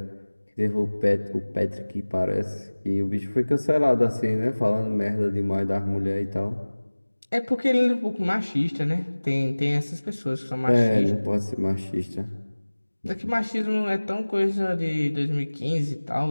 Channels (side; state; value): both; inverted; correlation -1.00